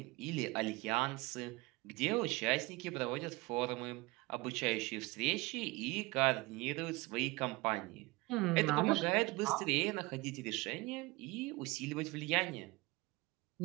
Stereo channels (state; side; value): quieter; left; 22.9 dB